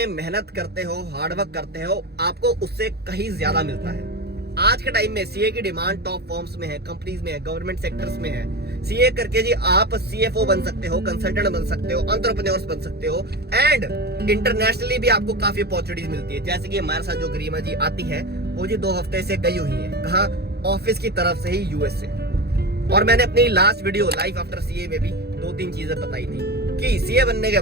मेहनत करते हो, हार्डवर्क करते हो, आपको उससे कहीं ज्यादा मिलता है। आज के टाइम में सीए की डिमांड टॉप फर्म्स में है, कंपनीज में है, गवर्नमेंट सेक्टर्स में है। सीए करके जी आप सीएफओ बन सकते हो, कंसल्टेंट बन सकते हो, एंटरप्रेन्योर्स बन सकते हो। एंड इंटरनेशनली भी आपको काफी अपॉर्चुनिटीज मिलती है। जैसे कि हमारे साथ जो गरिमा जी आती है, वो जी 2 हफ्ते से गई हुई है, कहाँ, ऑफिस की तरफ से ही, यूएस से। और मैंने अपनी last video life after CA में भी 2-3 चीजें बताई थी कि सीए बनने के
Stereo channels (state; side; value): late; left; 0.47 ms